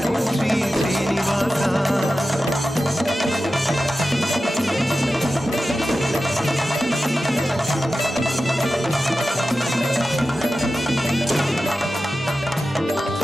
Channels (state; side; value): normal; both; correlation 0.93